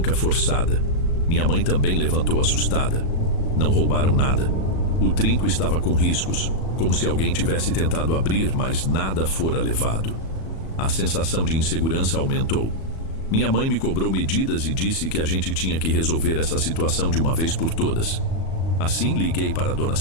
forçada. Minha mãe também levantou assustada. Não roubaram nada. O trinco estava com riscos, como se alguém tivesse tentado abrir, mas nada fora levado. A sensação de insegurança aumentou. Minha mãe me cobrou medidas e disse que a gente tinha que resolver essa situação de uma vez por todas. Assim, liguei para a dona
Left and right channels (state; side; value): late; right; 37 ms